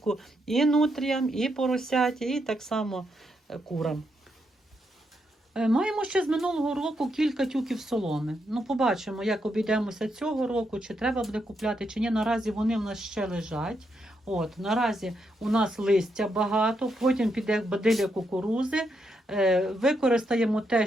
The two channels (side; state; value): both; normal; correlation 0.80